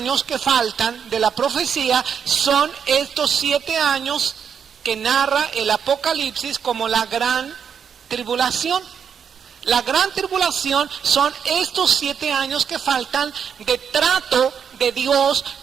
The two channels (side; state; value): left; quieter; 7.4 dB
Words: que faltan de la profecía son estos 7 años que narra el Apocalipsis como la gran tribulación. La gran tribulación son estos 7 años que faltan de trato de Dios